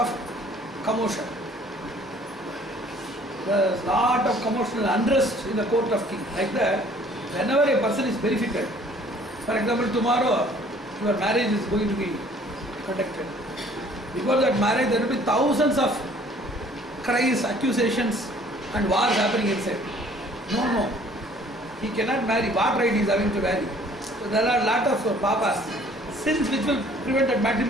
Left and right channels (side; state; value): both; normal; correlation 0.55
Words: commotion. There was lot of commotion and unrest in the court of king. Like that, whenever a person is verified, for example, tomorrow your marriage is going to be conducted. Before that marriage, there will be thousands of cries, accusations, and wars happening inside. No, he cannot marry. What right he is having to marry? So there are a lot of papas, sins which will prevent that